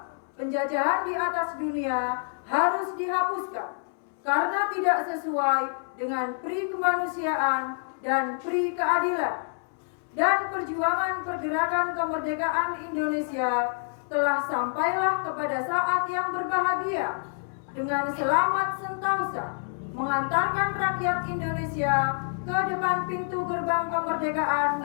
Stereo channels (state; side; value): silent; right; 60 dB below the other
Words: penjajahan di atas dunia harus dihapuskan karena tidak sesuai dengan pri kemanusiaan dan pri keadilan. Dan perjuangan pergerakan kemerdekaan Indonesia telah sampailah kepada saat yang berbahagia dengan selamat sentosa mengantarkan rakyat Indonesia ke depan pintu gerbang kemerdekaan